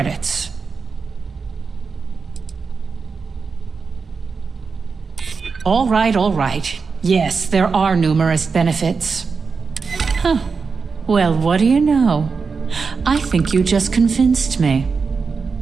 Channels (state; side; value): quieter; left; 5.0 dB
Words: All right. Yes, there are numerous benefits. Huh. Well, what do you know? I think you just convinced me.